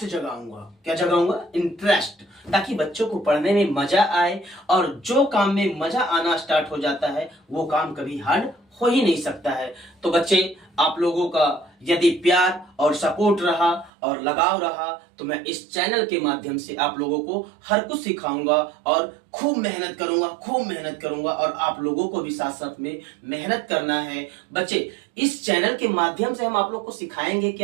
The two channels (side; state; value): left; drops out; at 13.9 s